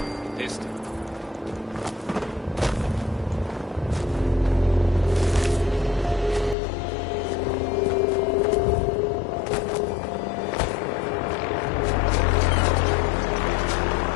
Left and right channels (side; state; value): right; drops out; at 6.6 s